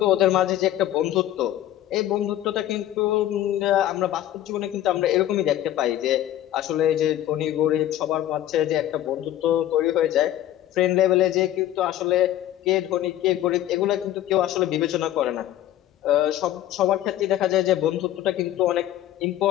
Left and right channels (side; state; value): right; quieter; 12.8 dB